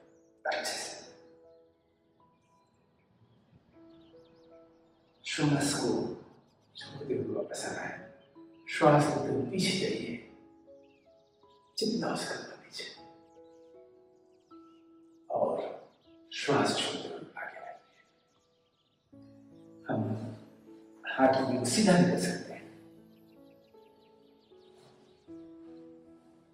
अच्छे से। श्वास को छोड़ते हुए वापस आना है। श्वास लेते हुए पीछे जाइए जितना हो सकता पीछे, और श्वास छोड़ते हुए आगे आइए। हम हाथ को सीधा नहीं कर सकते हैं।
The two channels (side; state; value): both; identical; correlation 1.00